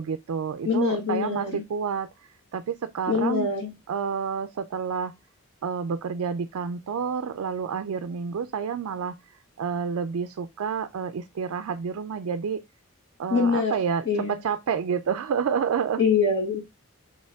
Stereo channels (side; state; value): both; normal; correlation -0.02